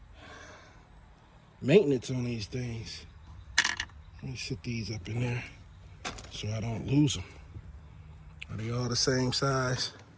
maintenance on these things. Let me sit these up in there so I don't lose them. Are they all the same size?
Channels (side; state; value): both; identical; correlation 1.00